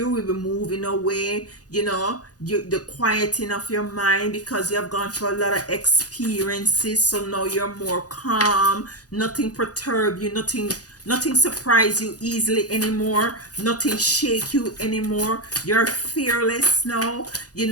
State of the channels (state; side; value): late; right; 0.67 ms